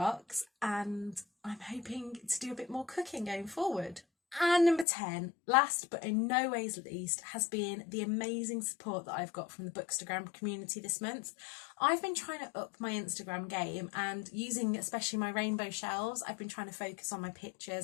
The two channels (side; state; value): right; drops out; at 4.9 s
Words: and I'm hoping to do a bit more cooking going forward. And number 10, last but in no ways least, has been the amazing support that I've got from the Bookstagram community this month. I've been trying to up my Instagram game, and using especially my rainbow shelves, I've been trying to focus on my